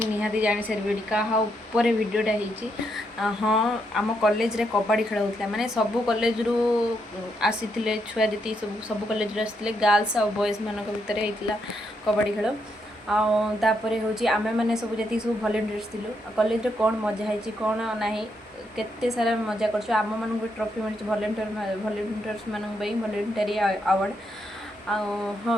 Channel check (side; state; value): both; normal; correlation 0.78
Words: निहाती जानि सारे कहा ऊपर वीडियोटा होती। हाँ, आम कॉलेज रे कबड्डी खेल होता माने सब कॉलेज रु आसीथिले छुआ जी सब कॉलेज रे आसीथिले गर्ल्स और बॉयज मानक भितर होता कबड्डी खेल। आपर हूँ आम मैंने सब जी सब भलेंटियर्स थिलु कॉलेज रे कौन मजा है कौन ना केते सारा मजा कर आम मान ट्रॉफी मिली भलेंटियर्स मान भलेंटरी अवार्ड।